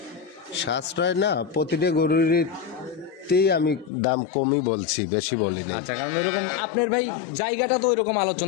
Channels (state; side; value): drops out; right; at 3.9 s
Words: সাশ্রয় না, প্রতিটা গরুরই আমি দাম কমই বলছি, বেশি বলিনি। আচ্ছা কারণ ওইরকম আপনার ভাই জায়গাটা তো ওইরকম